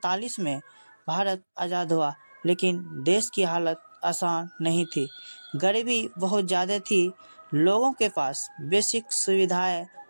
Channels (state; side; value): inverted; both; correlation -1.00